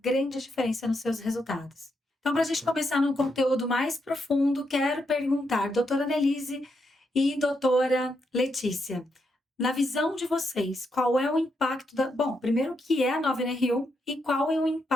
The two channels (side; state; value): both; normal; correlation 0.81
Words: grande diferença nos seus resultados. Então, para a gente começar num conteúdo mais profundo, quero perguntar, doutora Annelise e doutora Letícia, na visão de vocês, qual é o impacto Bom, primeiro, o que é a nova NR1 e qual é o